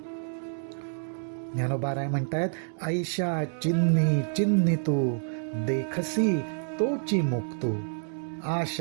ज्ञानोबाराय म्हणतायत, आयशा चिन्नी चिन्नी तू देखसी तोची मुक्तू,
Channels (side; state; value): left; silent; 59 dB below the other